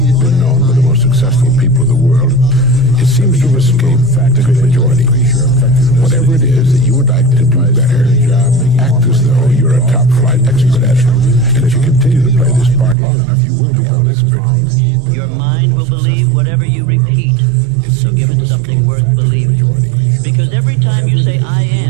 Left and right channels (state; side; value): drops out; left; at 13.0 s